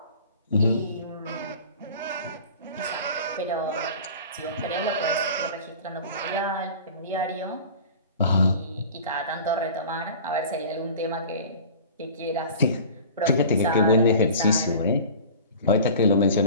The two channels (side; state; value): both; inverted; correlation -0.40